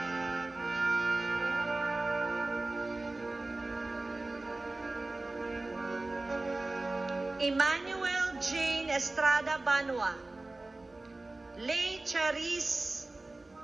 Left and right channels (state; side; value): quieter; left; 3.0 dB